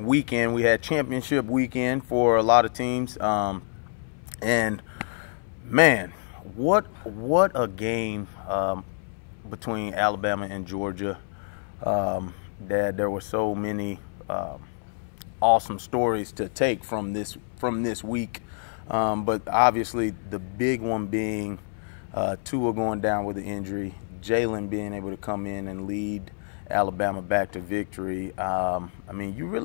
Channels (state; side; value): silent; right; 60 dB below the other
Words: We had championship weekend for a lot of teams, and man, what a game between Alabama and Georgia. That there were so many awesome stories to take from this week. But obviously the big one being Tua going down with an injury, Jalen being able to come in and lead Alabama back to victory. I mean, you